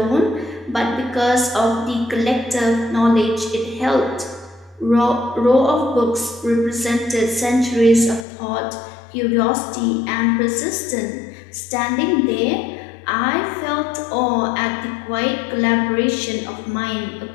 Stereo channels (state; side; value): drops out; right; at 8.2 s